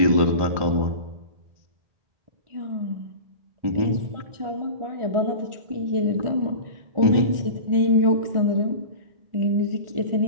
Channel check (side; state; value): left; late; 1.4 ms